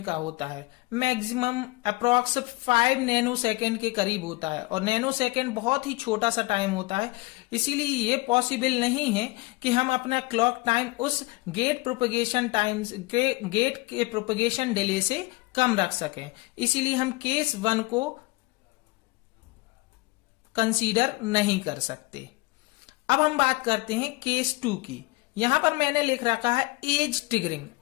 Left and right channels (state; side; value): quieter; right; 23.2 dB